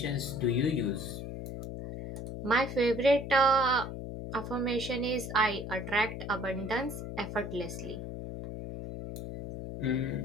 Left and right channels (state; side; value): noise; left; hum, 7 dB below the sound